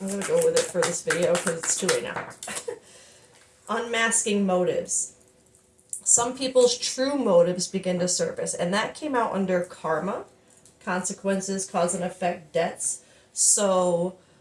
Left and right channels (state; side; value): identical; both; correlation 1.00